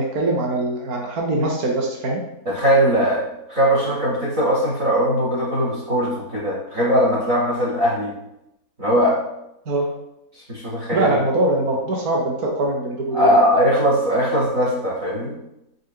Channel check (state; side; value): late; left; 3.9 ms